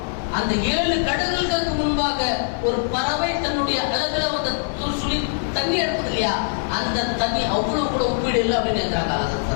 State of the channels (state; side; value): silent; right; digital silence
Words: அந்த 7 கடல்களுக்கு முன்பாக ஒரு பறவை தன்னுடைய அழகுல அந்த சுழி தண்ணி எடுப்பது இல்லையா, அந்த தண்ணி அவ்வளவு கூட ஒப்பீடு இல்லை அப்படின்னு இருக்கிறாங்க.